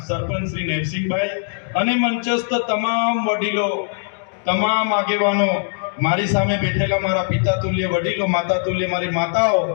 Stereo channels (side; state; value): right; silent; 65 dB below the other